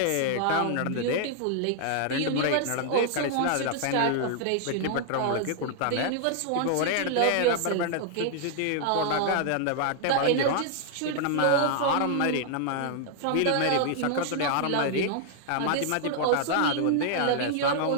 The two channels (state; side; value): different; both; correlation -0.01